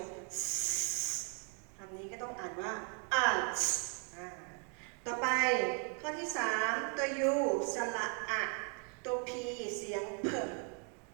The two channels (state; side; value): quieter; left; 39.5 dB